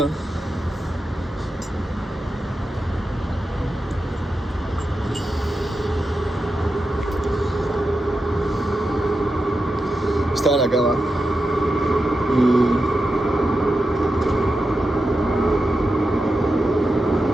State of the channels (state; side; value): normal; both; correlation 0.90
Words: Estaba en la cama